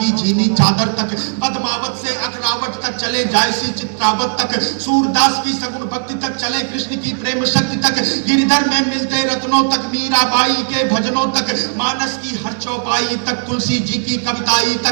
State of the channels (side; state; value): left; silent; digital silence